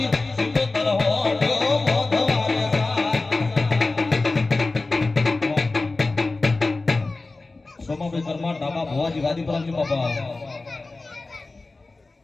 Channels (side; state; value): right; quieter; 3.4 dB